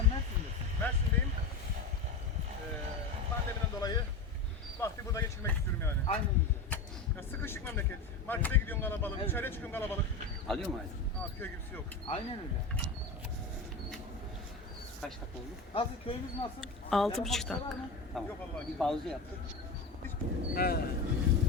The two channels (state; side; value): quieter; right; 3.7 dB